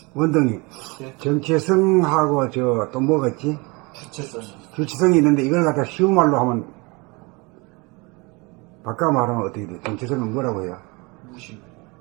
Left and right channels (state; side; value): quieter; left; 27.0 dB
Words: 원동이 예. 정체성하고 저 또 뭐겠지? 주체성. 주체성이 있는데 이걸 갖다 쉬운 말로 하면 바꿔 말하면 어떻게 돼? 정체성은 뭐라고 해요? 무심.